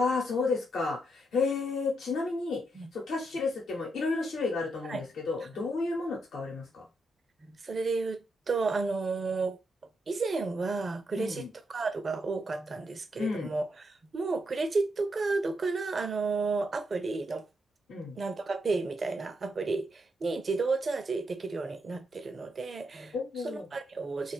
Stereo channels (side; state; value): both; normal; correlation 0.80